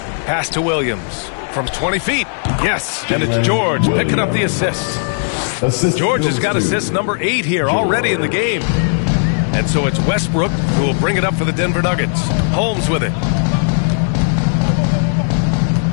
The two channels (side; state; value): right; silent; digital silence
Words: Pass to Williams from 20 feet. Yes, and it's George picking up the assist. George has got assist number 8 here already in the game. And so it's Westbrook who will bring it up for the Denver Nuggets. Holmes with it.